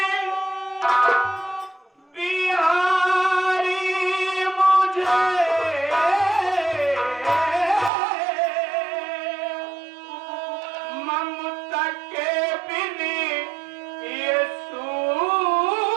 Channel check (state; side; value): drops out; left; at 7.9 s